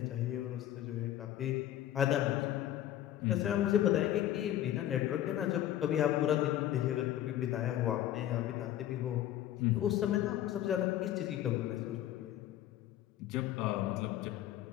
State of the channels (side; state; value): right; quieter; 12.5 dB